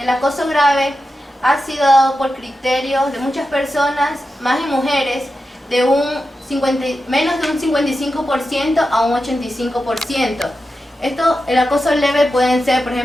acoso grave ha sido dado por criterios de muchas personas, más en mujeres, de un menos de un 55% a un 85%. El acoso leve pueden ser, por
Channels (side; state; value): both; normal; correlation 0.90